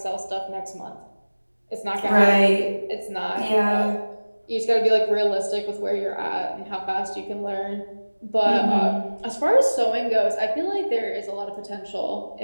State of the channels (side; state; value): both; inverted; correlation -1.00